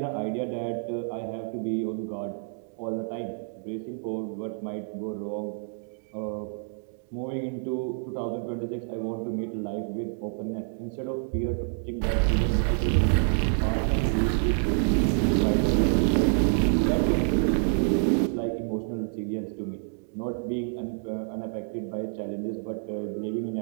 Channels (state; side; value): silent; left; digital silence